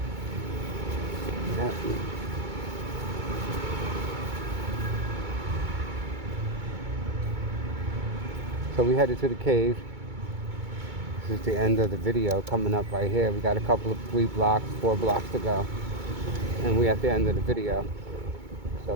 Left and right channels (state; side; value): late; left; 2.2 ms